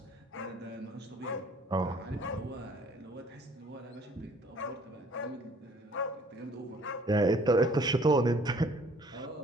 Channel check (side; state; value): both; normal; correlation 0.57